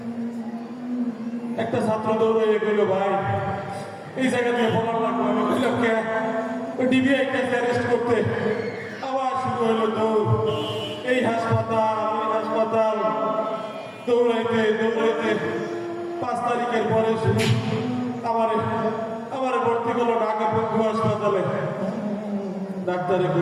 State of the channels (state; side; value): identical; both; correlation 1.00